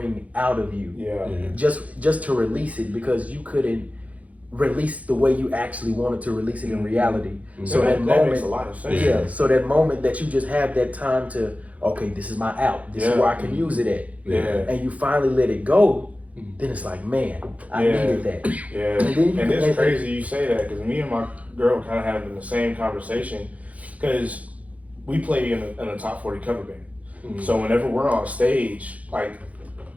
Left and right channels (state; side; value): late; left; 0.069 ms